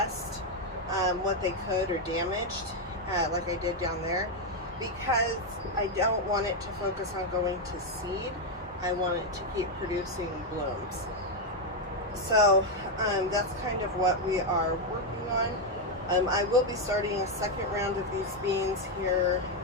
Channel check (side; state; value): both; normal; correlation 0.03